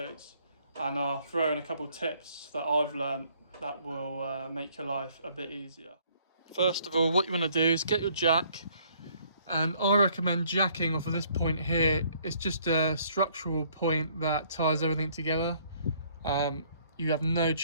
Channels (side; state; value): both; inverted; correlation -0.63